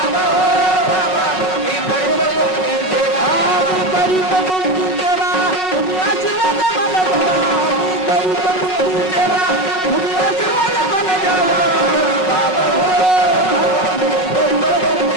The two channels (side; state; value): right; late; 5.4 ms